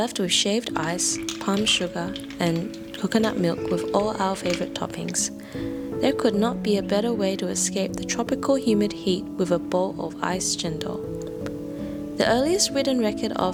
with shaved ice, palm sugar, and coconut milk with all our favorite toppings. There could not be a better way to escape the tropical humid heat with a bowl of iced chendol. The earliest written record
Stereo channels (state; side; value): identical; both; correlation 1.00